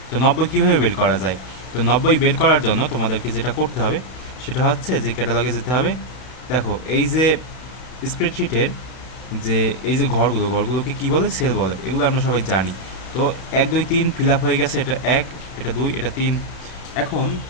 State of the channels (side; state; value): right; late; 32 ms